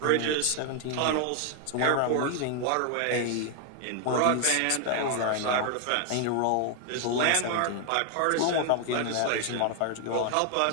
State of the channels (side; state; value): both; different; correlation 0.00